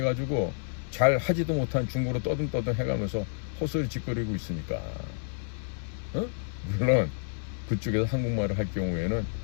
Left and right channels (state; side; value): silent; right; digital silence